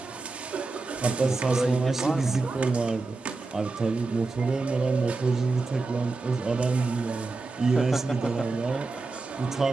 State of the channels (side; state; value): left; quieter; 3.6 dB